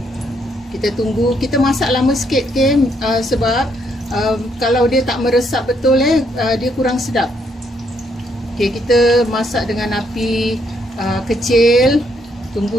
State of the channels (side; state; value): both; normal; correlation 0.73